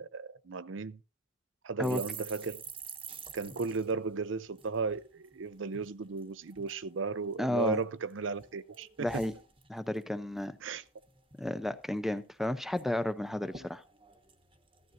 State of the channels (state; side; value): normal; both; correlation 0.37